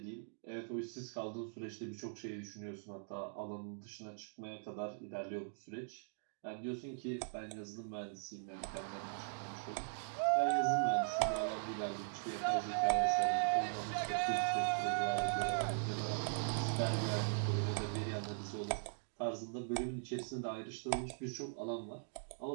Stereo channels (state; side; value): silent; left; digital silence